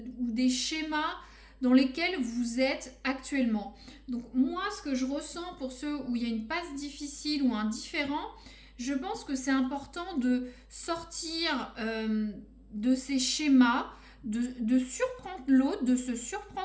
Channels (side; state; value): both; identical; correlation 1.00